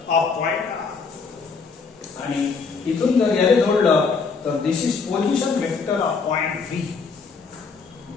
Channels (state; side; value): quieter; right; 5.0 dB